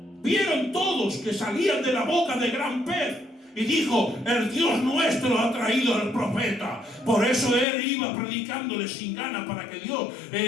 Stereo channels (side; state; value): right; drops out; at 7.7 s